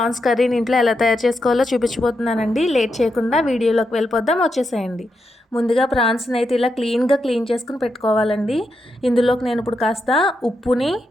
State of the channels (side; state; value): both; normal; correlation 0.85